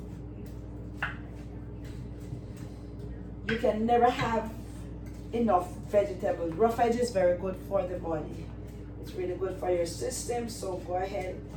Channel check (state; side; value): identical; both; correlation 1.00